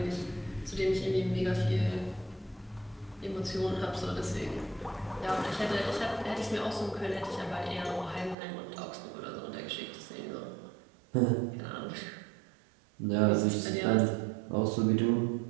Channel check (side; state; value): left; drops out; at 8.3 s